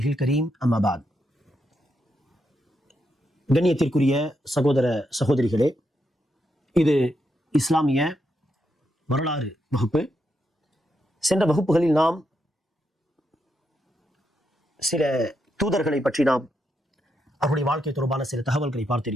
الكريم أما بعد. கண்ணியத்திற்குரிய சகோதர சகோதரிகளே, இது இஸ்லாமிய வரலாறு வகுப்பு. சென்ற வகுப்புகளில் நாம் சில தூதர்களை பற்றி அவருடைய வாழ்க்கை தொடர்பான சில தகவல்களை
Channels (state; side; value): normal; both; correlation 0.82